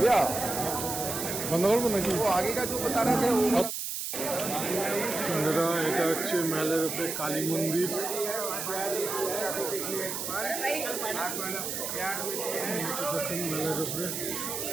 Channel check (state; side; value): noise; right; hiss, 4 dB below the sound